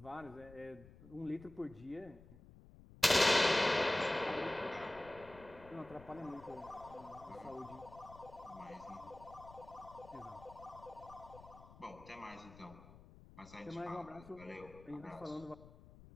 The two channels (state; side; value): noise; left; rumble, 19 dB below the sound